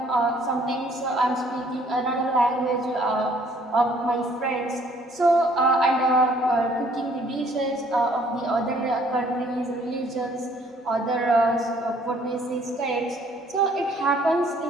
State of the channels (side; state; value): both; normal; correlation 0.61